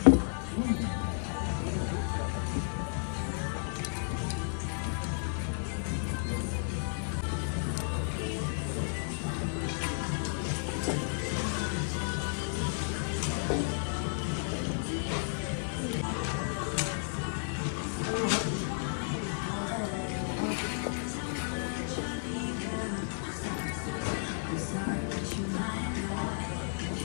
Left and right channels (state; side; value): silent; right; digital silence